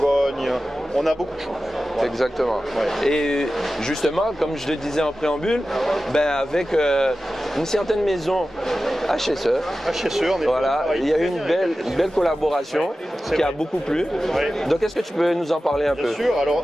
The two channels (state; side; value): normal; both; correlation 0.94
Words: On a beaucoup de choses. Voilà. Exactement. Ouais. Et justement, comme je le disais en préambule, avec une certaine maison HSE, on est voilà, il y a eu une belle collaboration qui a beaucoup plu. Donc est-ce que tu peux nous en parler un peu? Bien sûr, alors